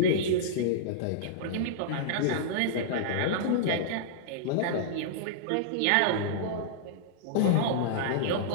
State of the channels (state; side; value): different; both; correlation -0.02